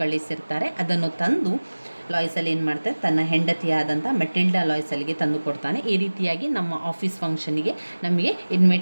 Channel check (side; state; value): both; inverted; correlation -1.00